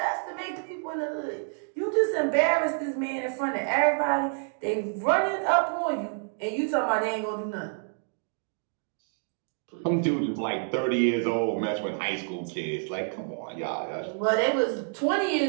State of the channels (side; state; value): left; silent; 59 dB below the other